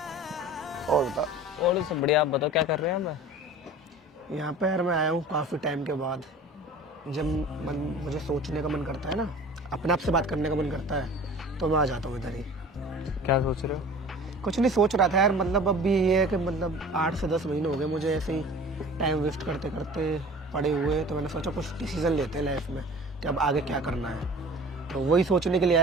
और बताओ। और सब बढ़िया, आप बताओ क्या कर रहे हैं आप? यहाँ पे यार मैं आया हूँ काफी टाइम के बाद। जब मुझे सोचने का मन करता है ना, अपने आप से बात करने का मन करता है, तो मैं आ जाता हूँ इधर ही। क्या सोच रहे हो? कुछ नहीं सोच रहा था यार, मतलब अब भी ये है कि मतलब 8 से 10 महीने हो गए मुझे ऐसे ही टाइम वेस्ट करते करते पड़े हुए। तो मैंने सोचा कुछ डिसीजन लेते हैं लाइफ में कि अब आगे क्या करना है। तो वही सोचने के लिए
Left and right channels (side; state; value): both; normal; correlation 0.42